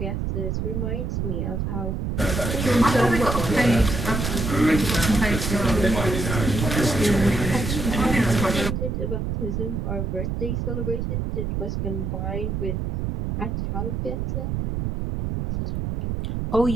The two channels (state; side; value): noise; right; rumble, 2 dB below the sound